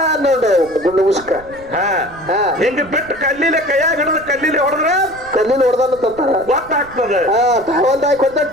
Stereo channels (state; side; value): noise; right; rumble, 22 dB below the sound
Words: ಗುಂಡು ಮುಸ್ಕ. ಹಿಂಗ ಬಿಟ್ಟು ಕಲ್ಲಿಲೆ ಕೈಯಾಗ ಹಿಡಿದು ಕಲ್ಲಿಲೆ ಹೊಡೆದ್ರೆ ಹೊಡೆದಲ್ಲ ಗೊತ್ತಾಗ್ತದೆ.